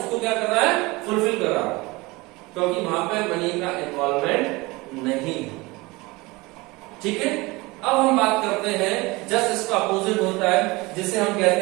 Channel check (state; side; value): quieter; left; 23.1 dB